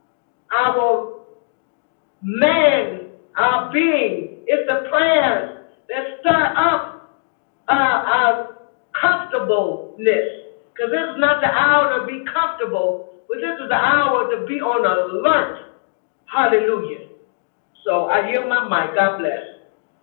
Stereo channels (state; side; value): silent; right; digital silence